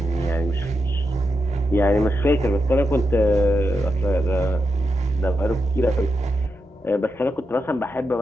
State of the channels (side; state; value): both; normal; correlation 0.86